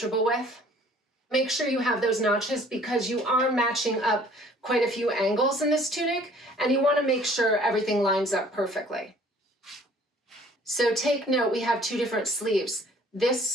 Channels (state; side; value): normal; both; correlation 0.54